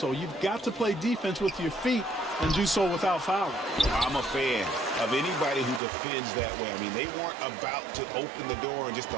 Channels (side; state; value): left; drops out; at 5.8 s